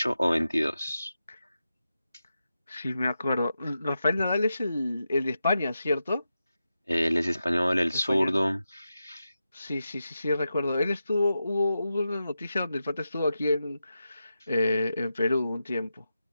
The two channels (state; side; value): inverted; both; correlation -0.90